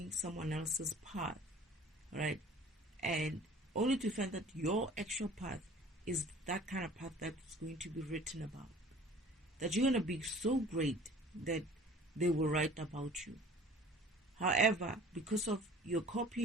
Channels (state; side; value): normal; both; correlation 0.48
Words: someone else's path, right? And only to find that your actual path is that kind of path that's going to be written about. That you're going to be so great that they will write about you. However, because of you're